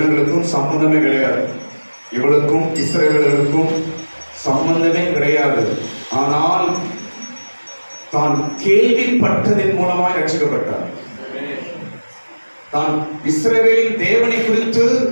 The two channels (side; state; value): both; inverted; correlation -1.00